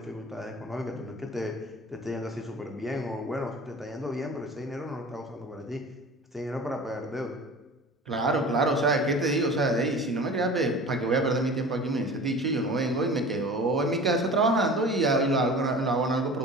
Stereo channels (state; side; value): normal; both; correlation 0.39